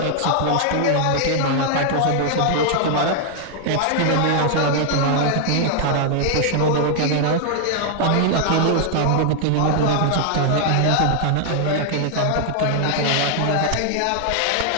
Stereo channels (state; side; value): different; both; correlation 0.00